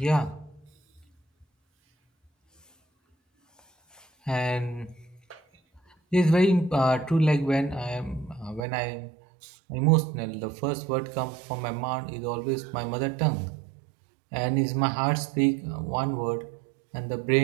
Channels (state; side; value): drops out; left; at 8.7 s